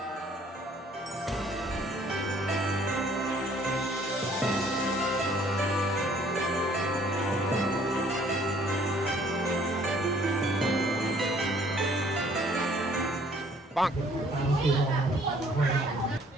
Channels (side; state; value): both; normal; correlation 0.59